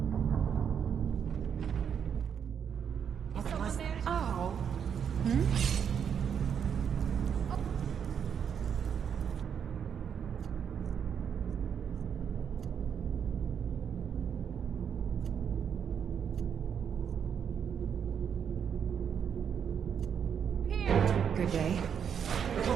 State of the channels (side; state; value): left; quieter; 7.8 dB